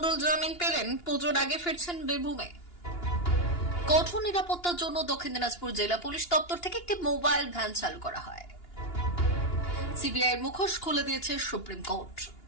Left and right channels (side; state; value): right; late; 2.9 ms